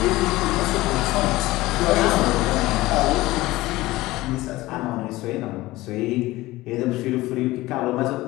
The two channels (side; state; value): right; quieter; 18.5 dB